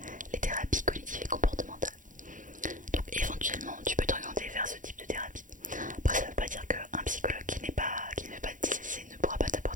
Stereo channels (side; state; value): left; late; 0.38 ms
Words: les thérapies cognitives et comportementales. Donc éventuellement tu peux t'orienter vers ce type de thérapie. Après ça veut pas dire qu'un psychologue qui ne fait pas de TCC ne pourra pas